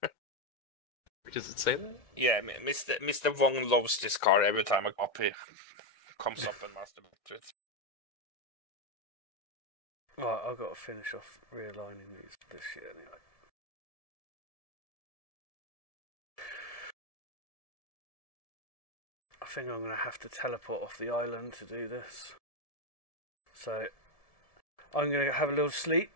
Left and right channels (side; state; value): right; late; 1.7 ms